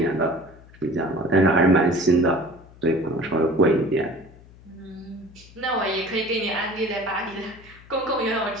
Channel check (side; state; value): left; noise; hum, 23 dB below the sound